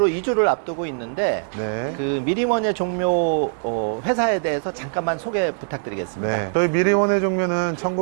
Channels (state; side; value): silent; left; 64 dB below the other